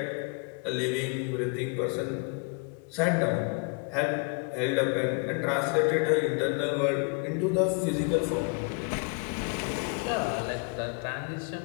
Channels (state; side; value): quieter; right; 34.8 dB